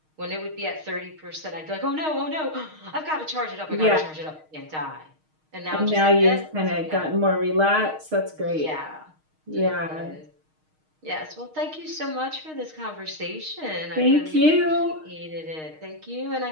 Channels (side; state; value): left; late; 6.4 ms